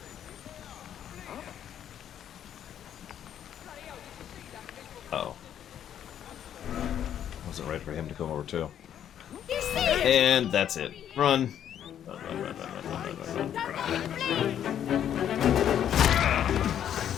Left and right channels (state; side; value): quieter; right; 9.9 dB